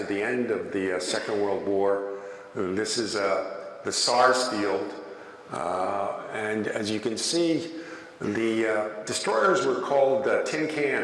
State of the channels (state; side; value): identical; both; correlation 1.00